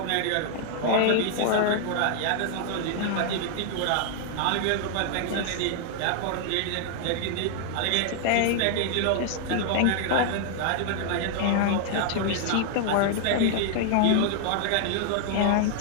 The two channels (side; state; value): both; different; correlation 0.00